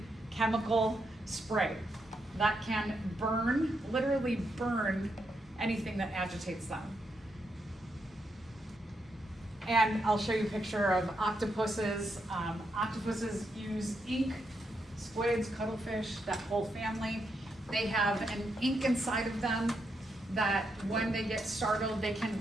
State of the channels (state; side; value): normal; both; correlation 0.81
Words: chemical spray that can burn, literally burn anything that agitates them. And I'll show you a picture of octopuses. Octopuses use ink, squids, cuttlefish, that whole family. They have an ink inside of them that when they get startled, they can